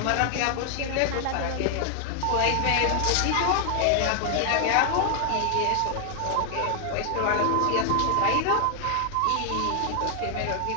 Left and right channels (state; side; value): different; both; correlation 0.00